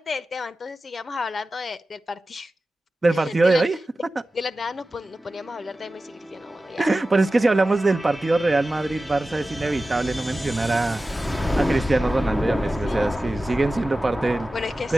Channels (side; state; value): both; normal; correlation 0.95